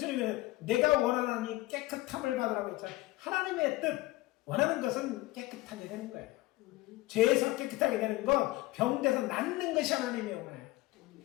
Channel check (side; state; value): right; quieter; 18.9 dB